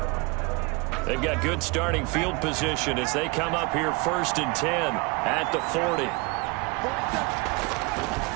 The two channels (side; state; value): left; quieter; 26.2 dB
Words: They've got good starting field position as they come up here 1st and 10 at the 40.